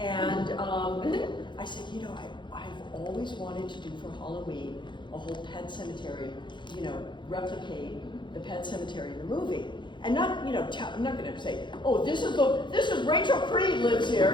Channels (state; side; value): late; right; 0.23 ms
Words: I said, I've always wanted to do for Halloween a whole pet cemetery, replicate the pet cemetery in the movie. And not, I'm not going to say, oh, this is Rachel Creed lives